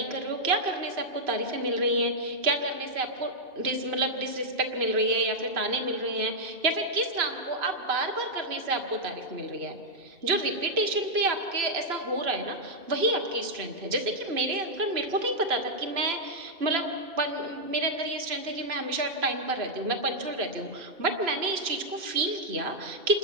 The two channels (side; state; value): left; late; 2.9 ms